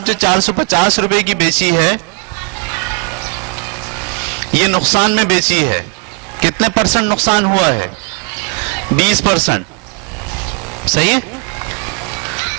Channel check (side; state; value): left; quieter; 34.4 dB